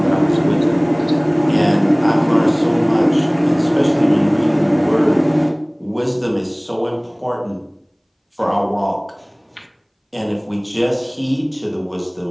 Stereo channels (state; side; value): identical; both; correlation 1.00